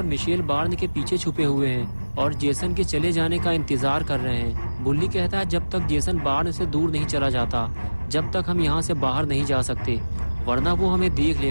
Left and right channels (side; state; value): both; inverted; correlation -1.00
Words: मिशेल बार्न के पीछे छुपे हुए हैं और जेसन के चले जाने का इंतजार कर रहे हैं। बुल्ली कहता है जब तक जेसन बार्न से दूर नहीं चला जाता, जब तक हम यहाँ से बाहर नहीं जा सकते, वरना वो हमें देख